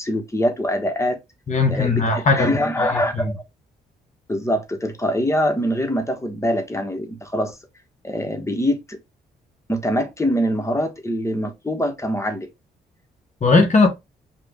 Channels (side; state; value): both; normal; correlation 0.65